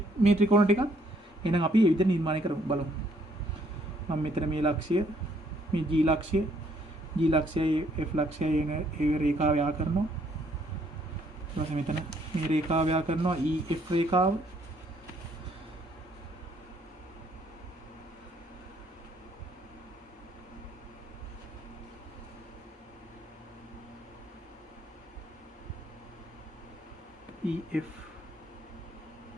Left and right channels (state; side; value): normal; both; correlation 0.67